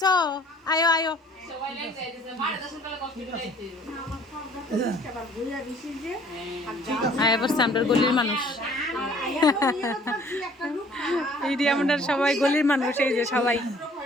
আয়ো আয়ো আমরা গলির মানুষ এই যে আমরা সবাই গলির মানুষ এই যে সবাই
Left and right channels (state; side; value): normal; both; correlation 0.56